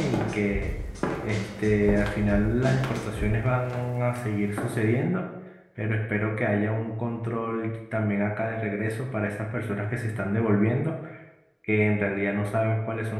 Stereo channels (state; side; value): identical; both; correlation 1.00